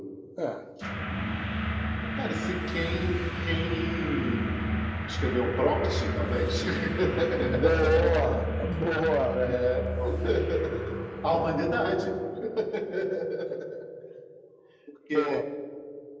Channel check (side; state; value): both; identical; correlation 1.00